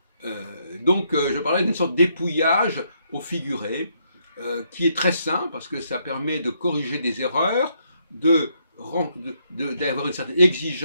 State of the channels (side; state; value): both; inverted; correlation -0.75